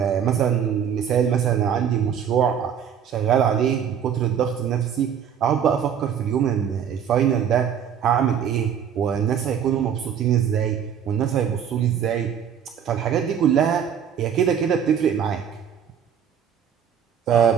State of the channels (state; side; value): quieter; left; 8.4 dB